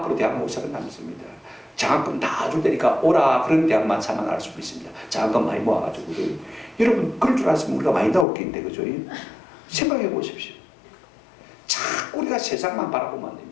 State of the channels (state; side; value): drops out; right; at 8.2 s